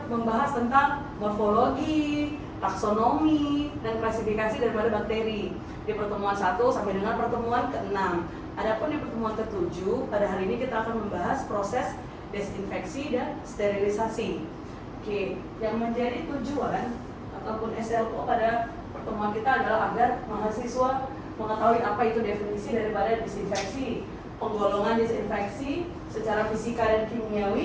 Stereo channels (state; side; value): identical; both; correlation 1.00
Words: membahas tentang morfologi, taksonomi, dan klasifikasi daripada bakteri di pertemuan 1 sampai dengan pertemuan ke-6. Adapun di pertemuan ke-7, pada hari ini kita akan membahas proses desinfeksi dan sterilisasi. Oke, yang menjadi tujuan ataupun SLO pada pertemuan kita adalah agar mahasiswa mengetahui apa itu definisi daripada disinfeksi, penggolongan disinfeksi secara fisika dan